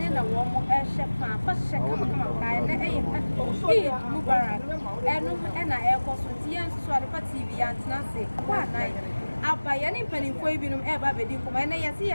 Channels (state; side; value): inverted; both; correlation -1.00